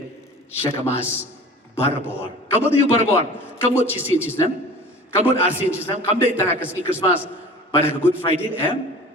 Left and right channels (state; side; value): normal; both; correlation 0.41